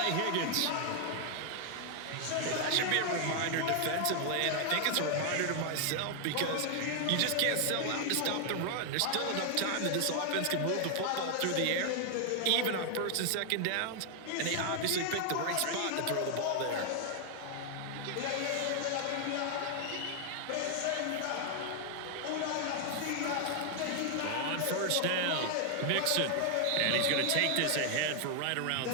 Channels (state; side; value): different; both; correlation 0.00